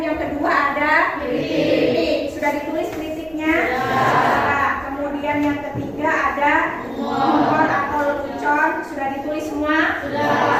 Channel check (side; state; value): right; noise; rumble, 26 dB below the sound